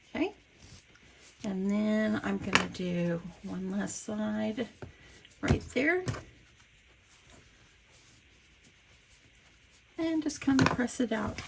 Okay. And then I'm going to do one last side right there. And just kind of press it out.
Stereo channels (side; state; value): both; identical; correlation 1.00